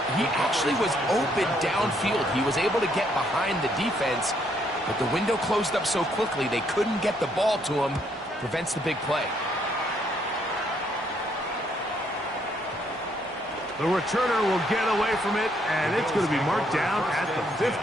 He actually was open downfield. He was able to get behind the defense, but the window closed up so quickly they couldn't get the ball to him. Prevents the big play. The returner will get away from it, and it's going to be marked down at the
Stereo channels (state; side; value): normal; both; correlation 0.71